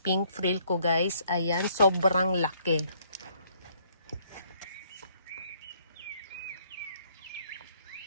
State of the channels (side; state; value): both; inverted; correlation -0.67